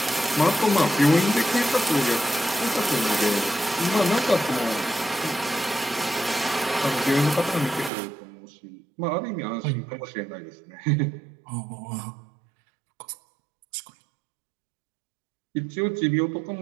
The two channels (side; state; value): left; drops out; at 7.9 s